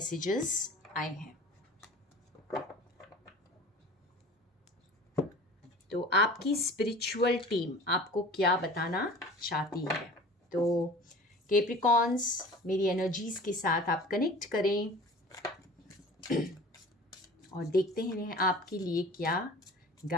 आए हैं। तो आपकी स्पिरिचुअल टीम आपको क्या बताना चाहती है। तो कैप्रिकॉन्स, मेरी एनर्जीज के साथ आप कनेक्ट करें और देखते हैं आपके लिए क्या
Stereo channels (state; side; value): normal; both; correlation 0.42